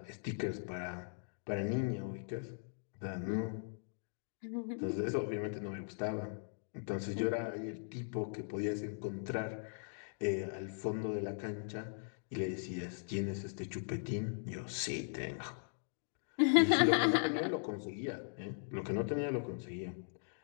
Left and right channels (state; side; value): silent; right; digital silence